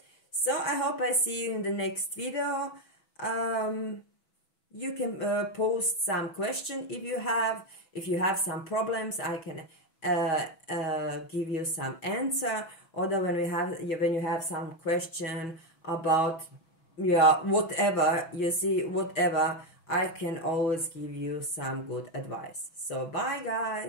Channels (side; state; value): right; late; 6.1 ms